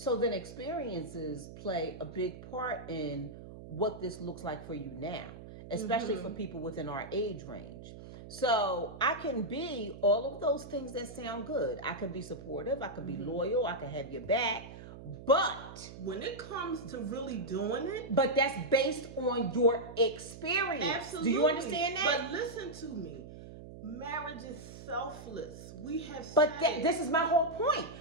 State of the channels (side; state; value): right; noise; hum, 14 dB below the sound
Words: then experiences play a big part in what this looks like for you now, especially for people within our age range. So I can be all of those things that sound good. I can be supportive. I can be loyal. I can have your back. But when it comes to really doing it, but that's based on your experience. Absolutely. Do you understand that? But listen to me. Marriage is selfless. We have But this is my whole point.